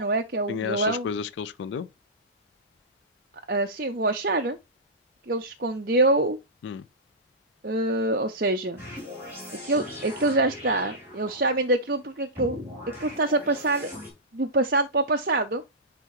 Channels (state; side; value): normal; both; correlation -0.16